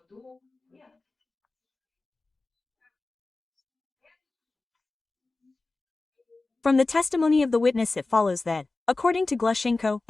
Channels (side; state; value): right; quieter; 3.4 dB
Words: From the testimony of the witness it follows that, according to Glushenko